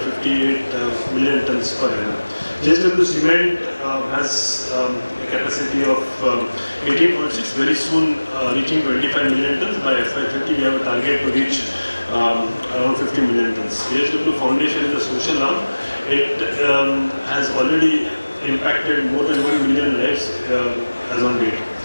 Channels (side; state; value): both; inverted; correlation -1.00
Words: million tons per annum. JSW Cement has a capacity of 18.6, very soon reaching 25 million tons. By FY30, we have a target to reach around 50 million tons. JSW Foundation is a social arm. It has already impacted more than 1 million lives as on date.